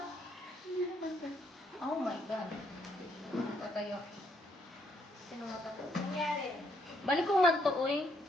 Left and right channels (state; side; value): normal; both; correlation 0.72